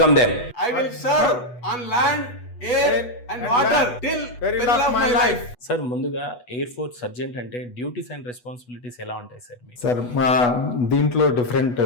them. I will serve on land, air and water till the end of my life. Sir, ముందుగా ఎయిర్ ఫోర్స్ సర్జెంట్ అంటే డ్యూటీస్ అండ్ రెస్పాన్సిబిలిటీస్ ఎలా ఉంటాయి సార్? సార్, మా దీంట్లో డిఫరెంట్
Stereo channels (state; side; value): late; right; 8.2 ms